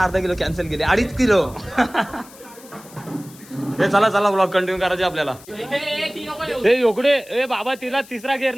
अर्धा किलो कॅन्सल केले. 2.5 किलो. हे चला ब्लॉग कंटिन्यू करायचे आपल्याला. हे योकडे ए बाबा, तिला तिसरा गेअर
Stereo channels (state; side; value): noise; left; hiss, 21 dB below the sound